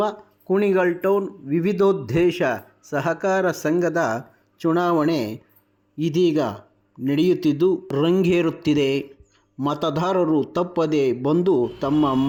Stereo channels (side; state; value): both; identical; correlation 1.00